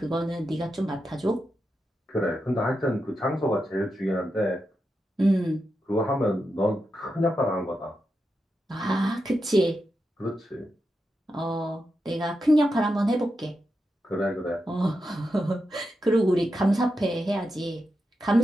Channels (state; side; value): normal; both; correlation 0.88